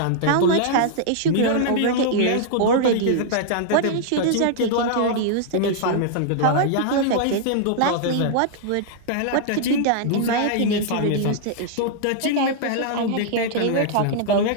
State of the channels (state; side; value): different; both; correlation -0.01